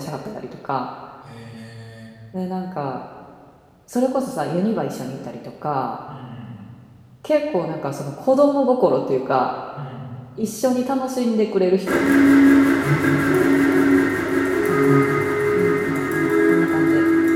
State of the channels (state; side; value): identical; both; correlation 1.00